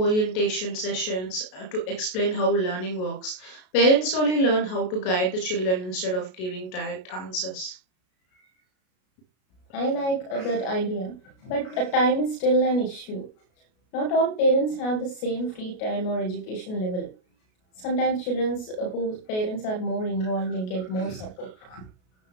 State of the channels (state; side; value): late; right; 33 ms